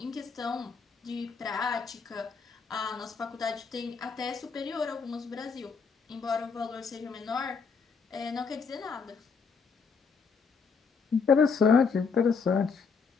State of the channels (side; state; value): right; quieter; 5.4 dB